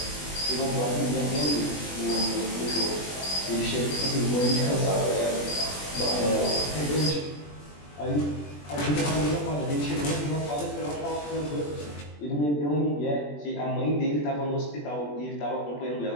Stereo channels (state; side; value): late; right; 21 ms